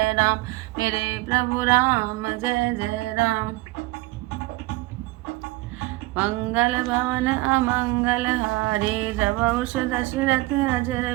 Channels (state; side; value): quieter; left; 20.6 dB